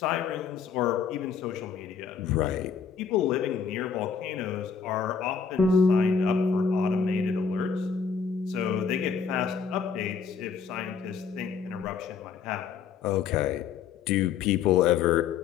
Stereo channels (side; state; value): right; quieter; 6.3 dB